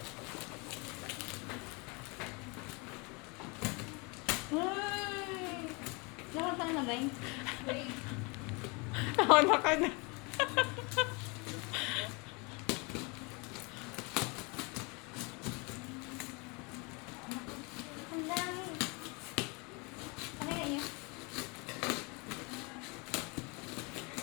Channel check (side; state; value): right; quieter; 29.8 dB